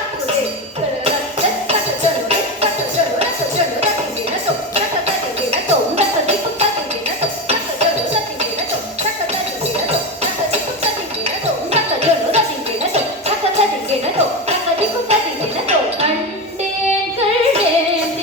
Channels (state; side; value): normal; both; correlation 0.18